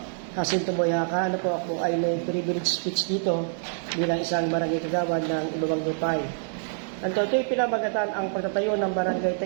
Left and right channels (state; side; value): silent; left; 61 dB below the other